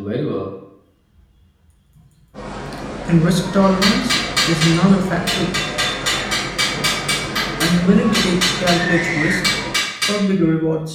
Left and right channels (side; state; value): both; identical; correlation 1.00